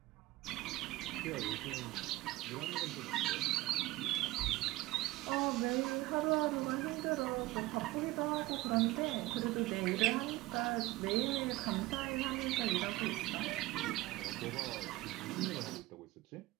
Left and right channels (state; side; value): quieter; left; 18.5 dB